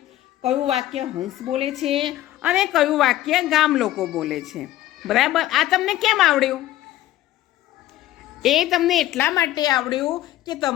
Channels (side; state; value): right; quieter; 14.5 dB